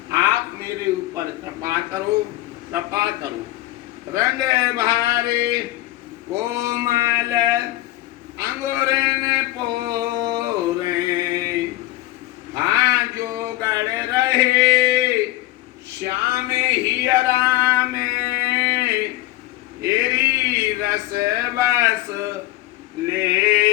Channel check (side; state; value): right; quieter; 16.8 dB